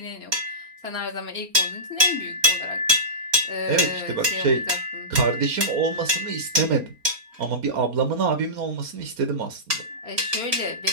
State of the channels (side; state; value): left; late; 4.3 ms